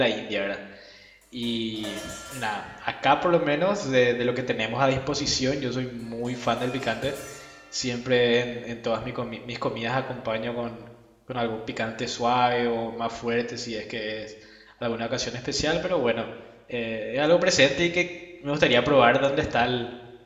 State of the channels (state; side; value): identical; both; correlation 1.00